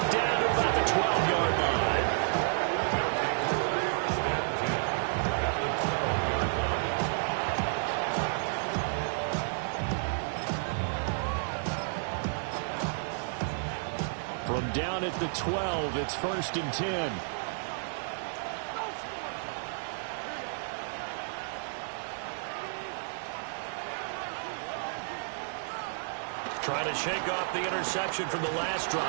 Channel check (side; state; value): left; silent; 56 dB below the other